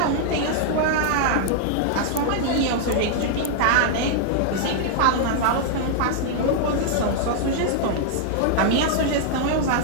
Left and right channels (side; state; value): both; different; correlation -0.01